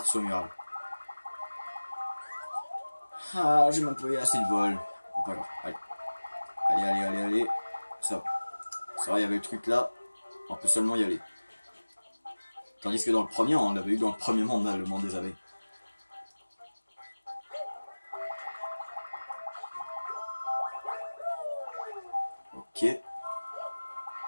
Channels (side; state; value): both; inverted; correlation -1.00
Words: de saut mural. Ah, j'ai même pas eu assez de vol. Bon, pas grave, allez. Allez, allez, allez, allez. Ça va. Ça va, il y avait le truc là. On peut seulement y aller. Tandis que dans le premier, on l'avait eu dans le premier monde, là, le monde des abeilles. Ok.